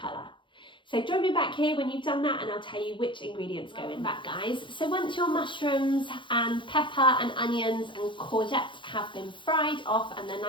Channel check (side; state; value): right; late; 0.24 ms